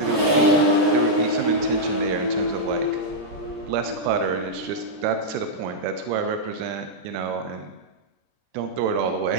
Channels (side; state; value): left; late; 14 ms